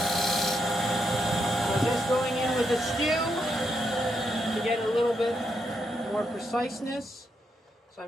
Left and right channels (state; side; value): normal; both; correlation 0.80